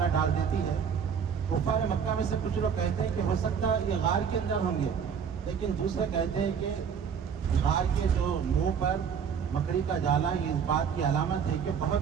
ڈال دیتی ہے۔ کفار مکہ میں سے کچھ لوگ کہتے ہیں کہ ہو سکتا ہے یہ غار کے اندر ہوں گے، لیکن دوسرے کہتے ہیں کہ غار کے جو منہ پر مکڑی کا جالا یہ اس بات کی علامت ہے کہ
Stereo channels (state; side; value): quieter; left; 7.1 dB